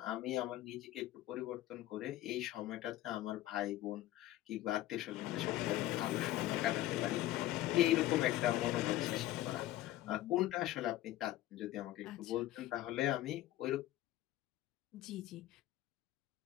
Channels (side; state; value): right; quieter; 14.9 dB